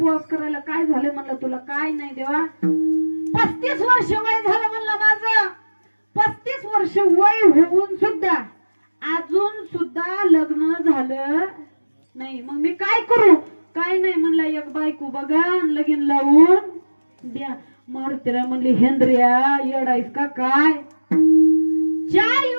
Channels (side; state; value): both; inverted; correlation -1.00